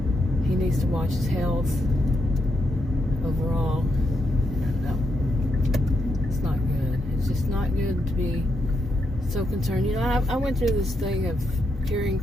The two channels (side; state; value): both; normal; correlation 0.81